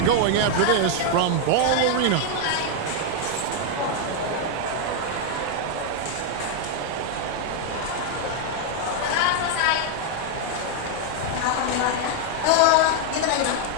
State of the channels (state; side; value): different; both; correlation 0.00